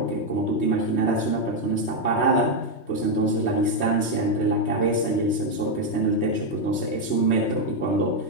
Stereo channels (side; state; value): right; late; 3.2 ms